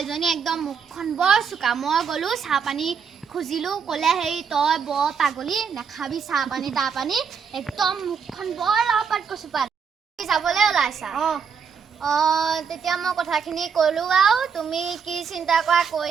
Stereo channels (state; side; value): quieter; left; 6.4 dB